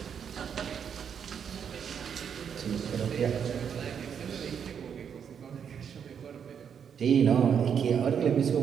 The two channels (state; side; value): quieter; left; 7.6 dB